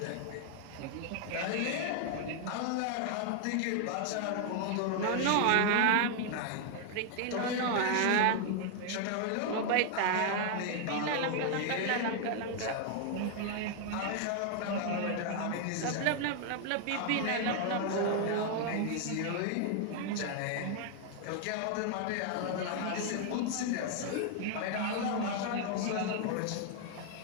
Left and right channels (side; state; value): both; different; correlation 0.00